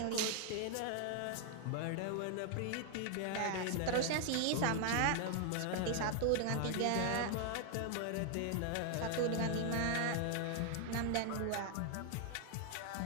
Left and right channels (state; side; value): different; both; correlation 0.00